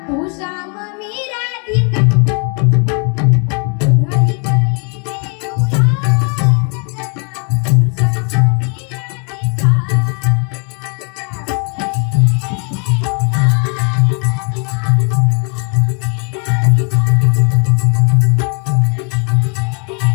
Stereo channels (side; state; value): right; quieter; 38.1 dB